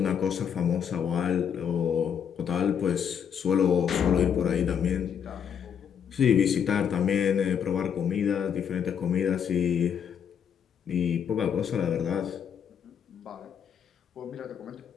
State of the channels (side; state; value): right; quieter; 8.0 dB